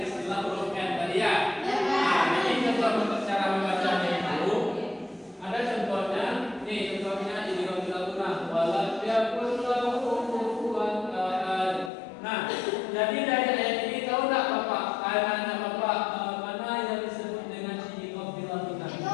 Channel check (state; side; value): drops out; right; at 11.9 s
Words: istilah huruf N tadi ya. Nah, jadi contoh cara membacanya itu ada contohnya. Nih contohnya idgham bilahun walam yakul lahu kufuwan ahad. Nah, jadi dari ayat ini tahu enggak Bapak? Anak Bapak mana yang disebut dengan idgham bilahun?